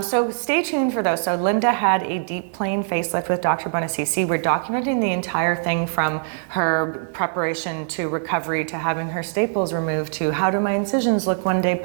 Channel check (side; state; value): left; silent; digital silence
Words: So stay tuned for those. So Linda had a deep plane facelift with Dr. Bonacici. We're documenting the entire thing from her preparation to recovery to having her staples removed to how do my incisions look one day